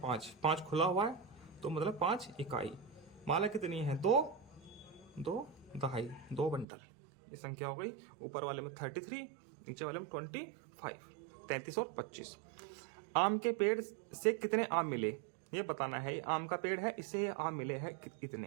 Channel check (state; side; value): drops out; left; at 6.7 s